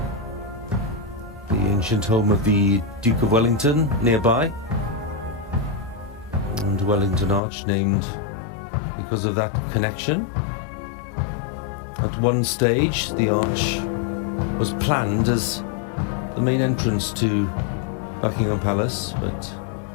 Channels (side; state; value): right; drops out; at 7.4 s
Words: The ancient home of the Duke of Wellington nearby, and Wellington Arch named because of that connection. At one stage, the arch was planned as the main entrance to Buckingham Palace, but